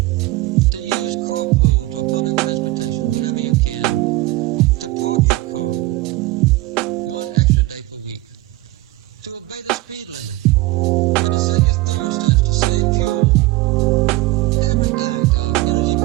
to use carpools or public transportation whenever you can, to park your car one extra day per week, to obey the speed limit, and to set your thermostats to save fuel. Every act of energy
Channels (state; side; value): quieter; left; 18.9 dB